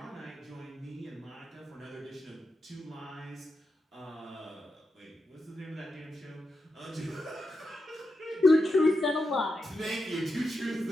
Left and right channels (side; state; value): both; normal; correlation 0.87